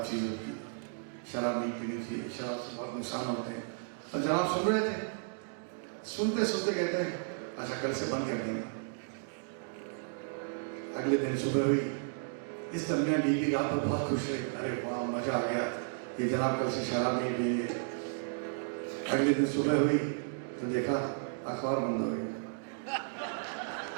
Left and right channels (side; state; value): left; silent; digital silence